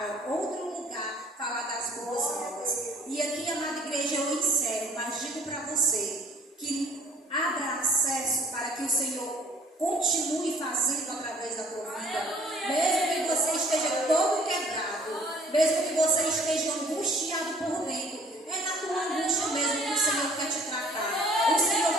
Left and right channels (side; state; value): both; normal; correlation 0.55